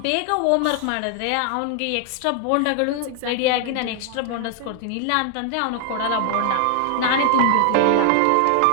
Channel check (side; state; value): both; different; correlation 0.00